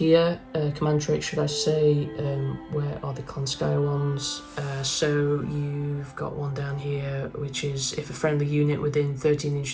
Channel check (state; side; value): identical; both; correlation 1.00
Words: Command traits, should I say. Where are the Klanskaya ones? So you've got one down here, which is if a friendly unit within 13